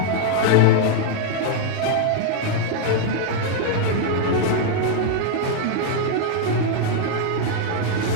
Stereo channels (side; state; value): both; different; correlation 0.00